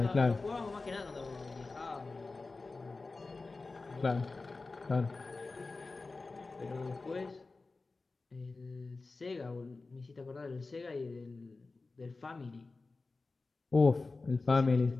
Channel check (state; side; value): quieter; right; 3.7 dB